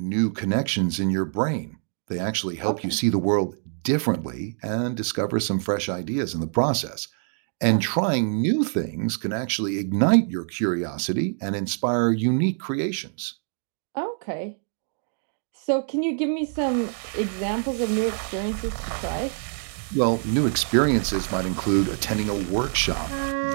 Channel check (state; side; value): silent; left; 60 dB below the other